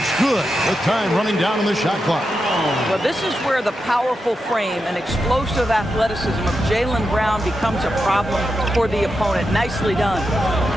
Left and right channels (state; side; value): normal; both; correlation 0.88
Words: good with time running down on the shot clock. Well, this is where the powerful frame and explosive athleticism of Jaylen Brown becomes a problem for the opponent. Nicely done.